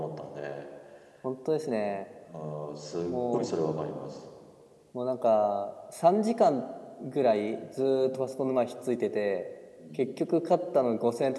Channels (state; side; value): identical; both; correlation 1.00